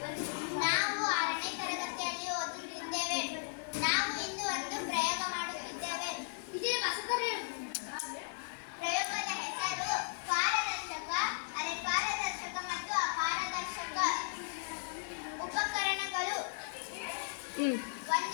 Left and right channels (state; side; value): silent; right; digital silence